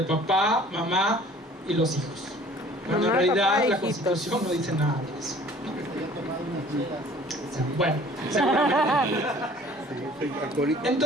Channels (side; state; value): both; normal; correlation 0.51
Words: papá, mamá y los hijos. Cuando en realidad la Constitución no dice nada de eso. Bueno, seguramente.